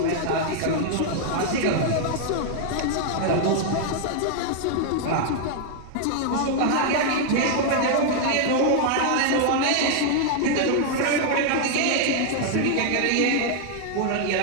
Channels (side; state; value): both; different; correlation 0.00